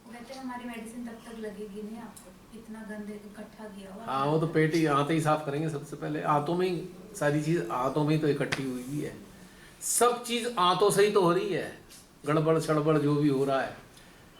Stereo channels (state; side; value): identical; both; correlation 1.00